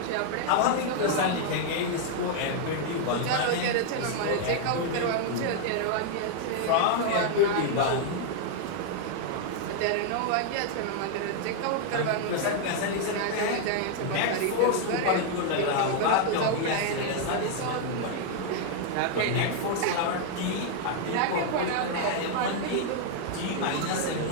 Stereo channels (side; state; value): both; different; correlation 0.00